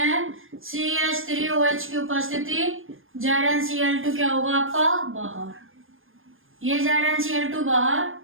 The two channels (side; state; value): left; late; 0.59 ms